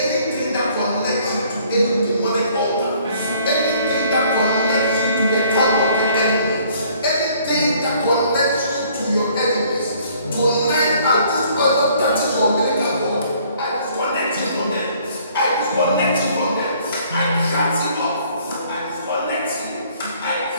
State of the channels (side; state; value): both; inverted; correlation -0.60